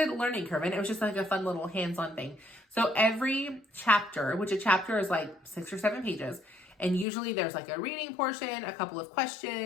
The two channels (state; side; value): drops out; right; at 7.1 s